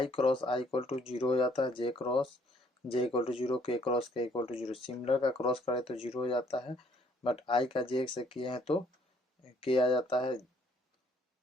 cross i equal to 0 हो जाता है, j cross j equal to 0, k cross k equal to 0। Similar का क्रॉस करे तो 0 हो जाता है, बट i का j से किए हैं तो k आ जाता है,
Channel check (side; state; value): both; normal; correlation 0.63